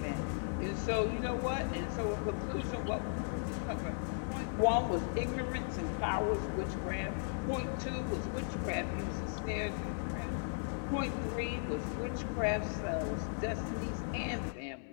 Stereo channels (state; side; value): silent; right; digital silence